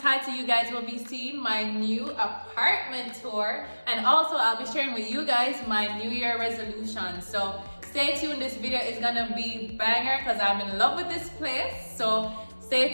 you guys will be seeing my new apartment tour, and also I'll be sharing with you guys my New Year resolution. So stay tuned, this video is gonna be banger because I'm in love with this place. So stay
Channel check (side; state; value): both; inverted; correlation -1.00